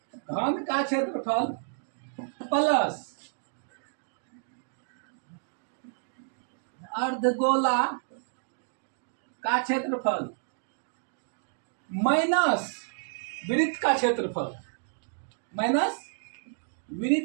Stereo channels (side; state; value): left; silent; digital silence